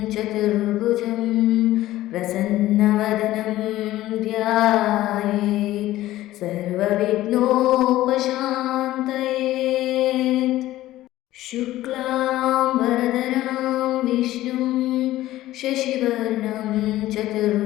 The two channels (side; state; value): right; quieter; 15.4 dB